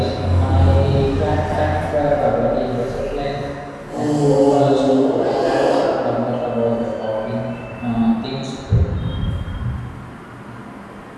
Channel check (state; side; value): identical; both; correlation 1.00